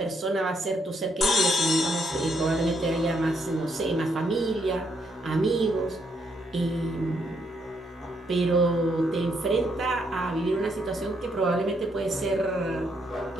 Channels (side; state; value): both; normal; correlation 0.74